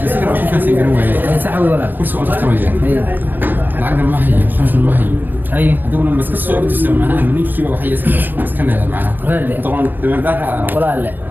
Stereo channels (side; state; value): left; late; 0.092 ms